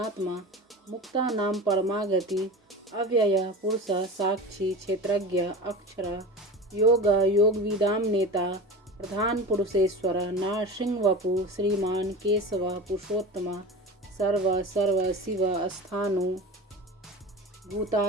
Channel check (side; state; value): both; normal; correlation 0.31